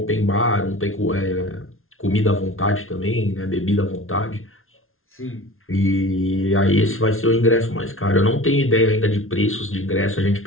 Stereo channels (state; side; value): late; right; 0.61 ms